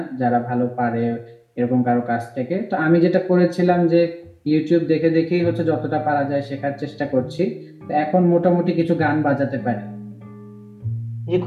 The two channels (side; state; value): both; identical; correlation 1.00